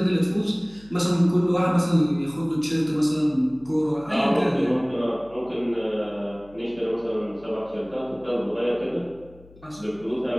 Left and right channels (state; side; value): noise; left; hum, 24 dB below the sound